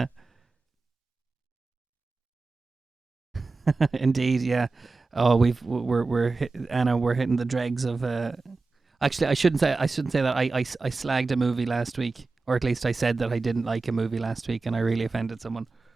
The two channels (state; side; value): quieter; left; 3.8 dB